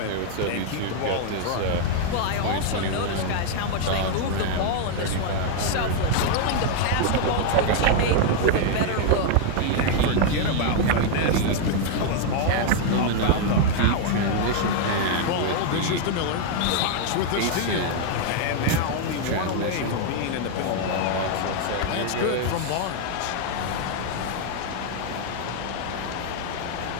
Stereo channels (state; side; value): different; both; correlation 0.00